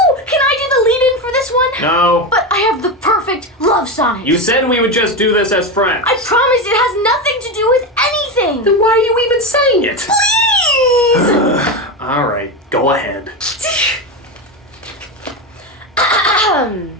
Can I do the lead-in for this one? No. But I have the perfect love sonnet. You said we would just do this as friends. I promise it has nothing to do with anything. Then why are you even saying it? Please! All right, go ahead. Damn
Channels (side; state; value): both; normal; correlation 0.16